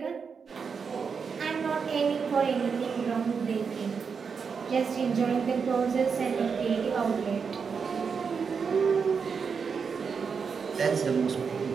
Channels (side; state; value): left; quieter; 5.9 dB